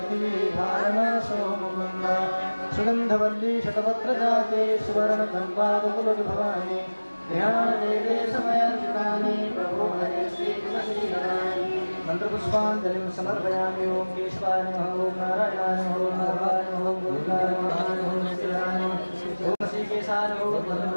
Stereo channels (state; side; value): inverted; both; correlation -1.00